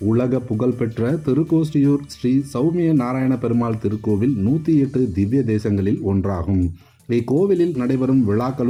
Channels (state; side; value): identical; both; correlation 1.00